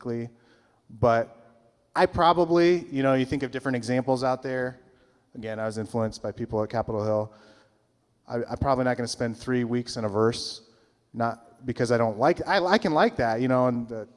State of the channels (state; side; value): identical; both; correlation 1.00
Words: But I probably, you think of different examples out there. Again, I was influenced by people at Capitol Hill. I'm probably not going to spend 3 weeks in a verse, not because I don't like, I can like that, and